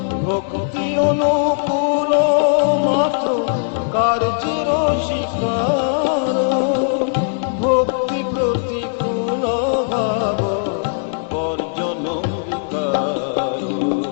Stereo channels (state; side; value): silent; right; digital silence